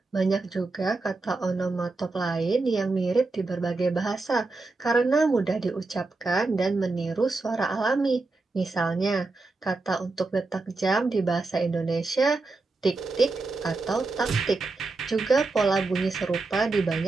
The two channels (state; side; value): quieter; left; 3.5 dB